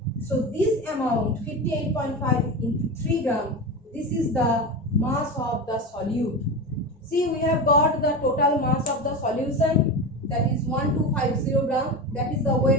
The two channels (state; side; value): normal; both; correlation 0.23